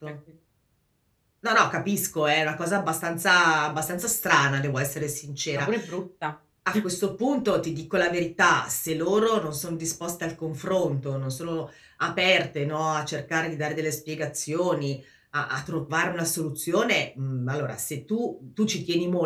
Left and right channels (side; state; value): both; identical; correlation 1.00